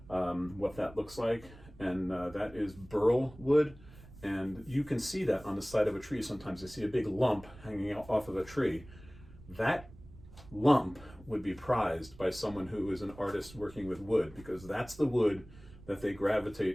what that looks like. And that is burl wood. And you can see that on the side of a tree sometimes. I see a big lump hanging off of a tree. That lump would be prized by someone who is an artist working with wood, because that's the wood that they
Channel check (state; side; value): noise; right; rumble, 19 dB below the sound